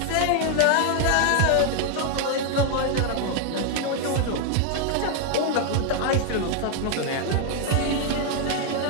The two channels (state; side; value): different; both; correlation 0.00